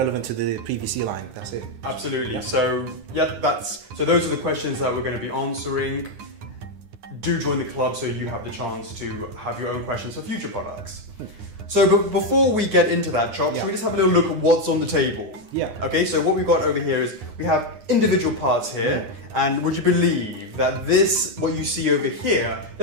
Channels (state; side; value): late; left; 9.8 ms